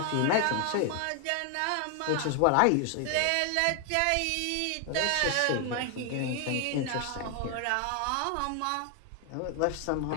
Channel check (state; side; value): different; both; correlation 0.00